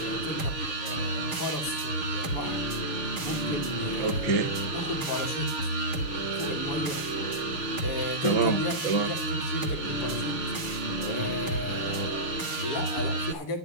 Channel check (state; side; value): late; right; 6.4 ms